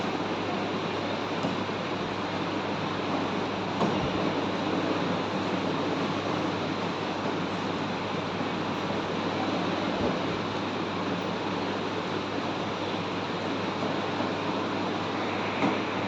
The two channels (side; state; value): both; identical; correlation 1.00